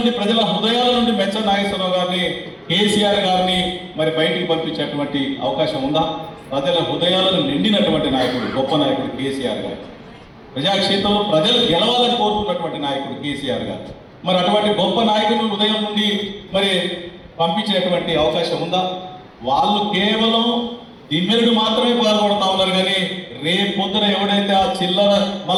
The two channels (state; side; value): identical; both; correlation 1.00